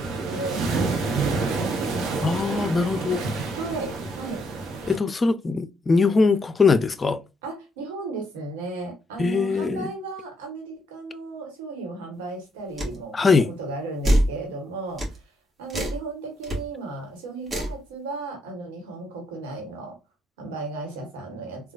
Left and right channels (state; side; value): normal; both; correlation 0.75